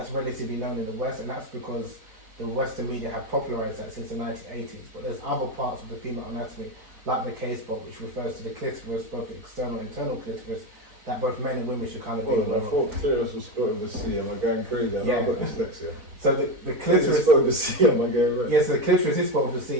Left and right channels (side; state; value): left; late; 4.0 ms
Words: relatively known in the West, and that's because the Western media have popularized that since the 1980s. But there's other parts of the female anatomy, like the K-spot, which refers to the clitoris, both the external and internal clitoris, that both men and women should kind of be aware I thought clitoris was spelled with a C. Am I going crazy? I've got dyslexia. So the clitoris is spelled with a C. Am I going right? Yes, the clitoris is spelled with a